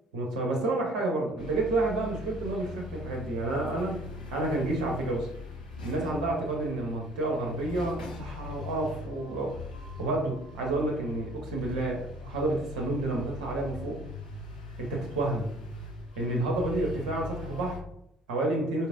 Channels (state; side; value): normal; both; correlation 0.53